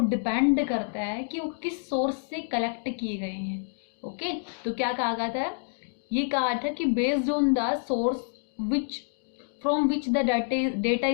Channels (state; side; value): silent; right; digital silence